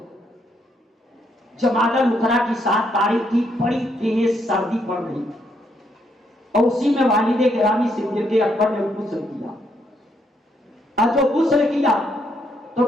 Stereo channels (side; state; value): both; normal; correlation 0.74